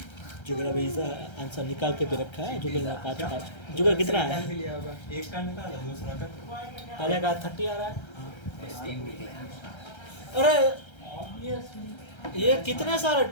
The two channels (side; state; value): right; late; 1.3 ms